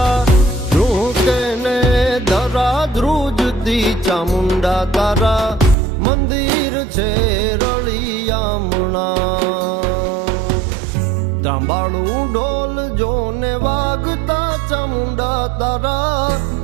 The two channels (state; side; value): drops out; left; at 5.8 s